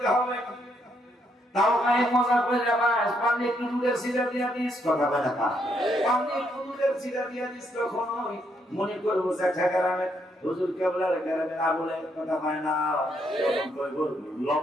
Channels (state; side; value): normal; both; correlation 0.75